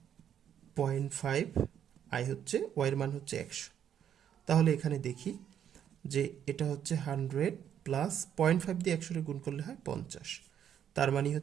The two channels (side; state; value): left; quieter; 9.4 dB